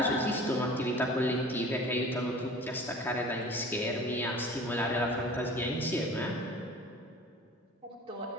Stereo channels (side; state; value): both; normal; correlation 0.43